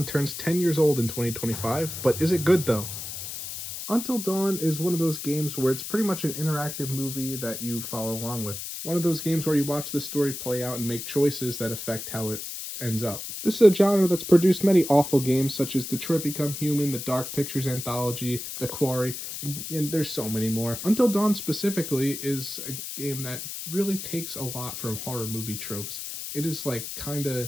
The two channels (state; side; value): noise; left; hiss, 7 dB below the sound